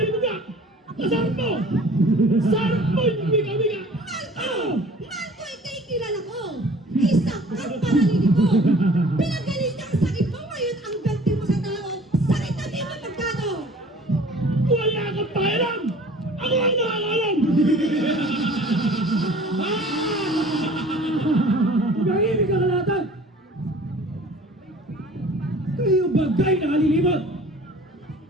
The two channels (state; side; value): normal; both; correlation 0.48